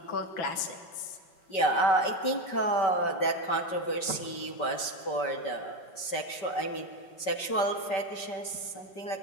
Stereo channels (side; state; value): right; late; 5.2 ms